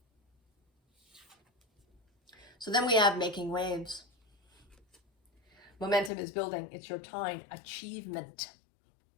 So then we have making waves. Momentum is building. It's your time. Achievement.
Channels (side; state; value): right; drops out; at 6.1 s